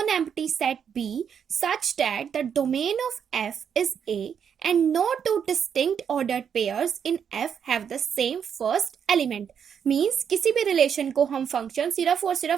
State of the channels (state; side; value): quieter; left; 7.7 dB